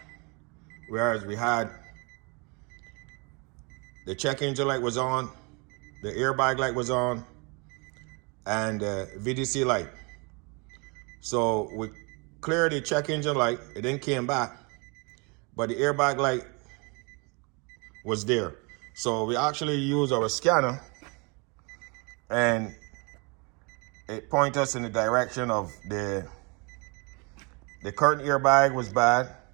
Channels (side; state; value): left; quieter; 31.0 dB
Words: whereas we had the check engine light was on, the airbag light was on, and the VDC light. So we cleared the check engine light, it then came back, but the airbag light was there. So we actually used our scanner and it pointed us in the direction of the curtain airbag was bad